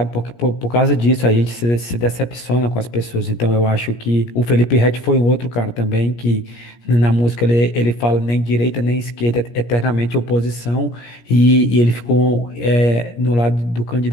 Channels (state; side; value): late; right; 17 ms